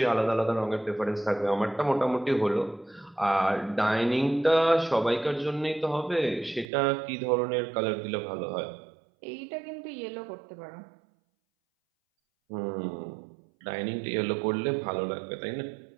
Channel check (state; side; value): drops out; left; at 6.7 s